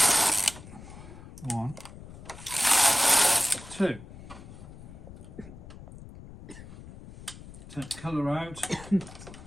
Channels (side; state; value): left; noise; rumble, 16 dB below the sound